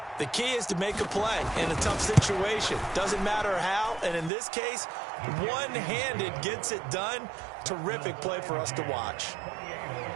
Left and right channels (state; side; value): drops out; left; at 4.3 s